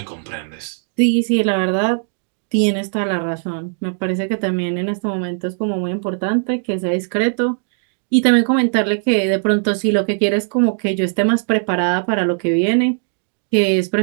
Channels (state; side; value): silent; left; digital silence